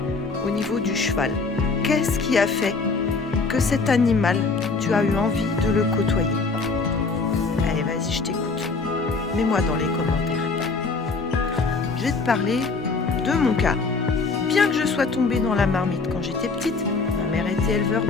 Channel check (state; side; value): quieter; right; 4.1 dB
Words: au niveau du cheval. Qu'est-ce qui a fait que cet animal, tu as eu envie de le côtoyer? Allez, vas-y, je t'écoute. Mets-moi dans les commentaires. Je vais te parler de mon cas. Bien que je sois tombée dans la marmite quand j'étais petite, ma mère était éleveur